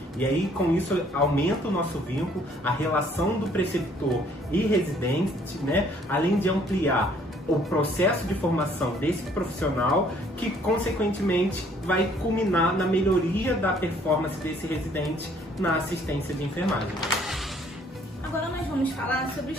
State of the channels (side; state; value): both; normal; correlation 0.61